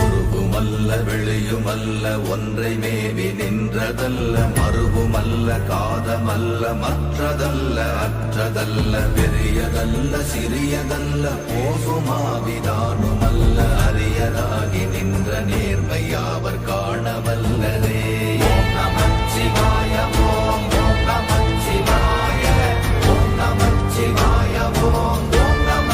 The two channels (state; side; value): identical; both; correlation 1.00